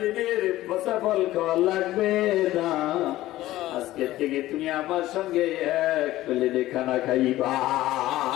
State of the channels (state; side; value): quieter; right; 15.7 dB